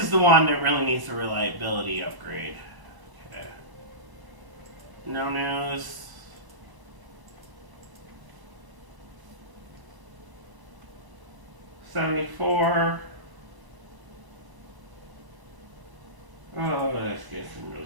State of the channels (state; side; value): late; left; 1.0 ms